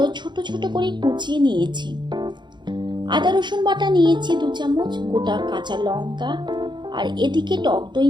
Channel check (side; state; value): left; late; 0.22 ms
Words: ছোট ছোট করে কুচিয়ে নিয়েছি। আদা রসুন বাটা নিয়েছি 2 চামচ, গোটা কাঁচা লঙ্কা, আর এদিকে টক দই